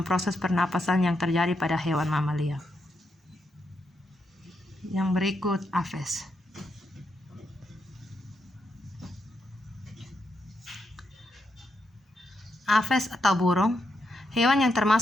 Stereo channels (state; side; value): normal; both; correlation 0.82